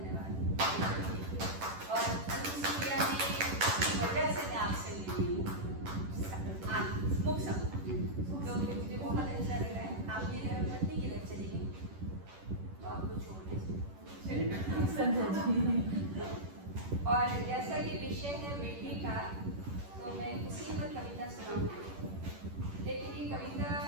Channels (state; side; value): late; left; 11 ms